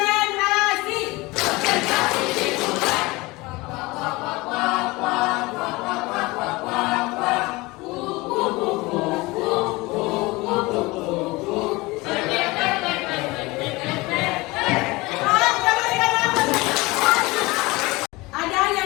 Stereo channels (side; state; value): right; quieter; 22.4 dB